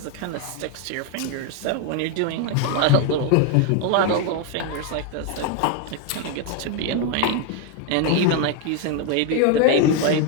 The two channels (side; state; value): both; different; correlation 0.01